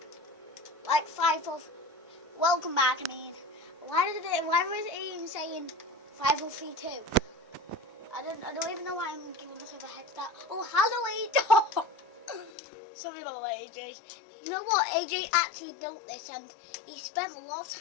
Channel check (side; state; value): right; drops out; at 12.5 s